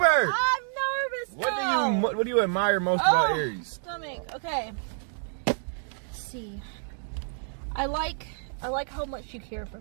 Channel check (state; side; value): silent; left; 59 dB below the other